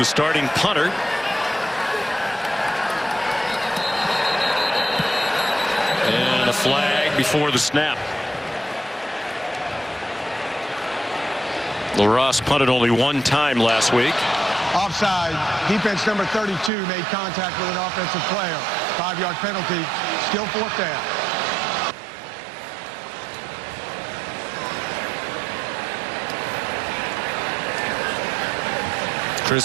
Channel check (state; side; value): drops out; left; at 16.7 s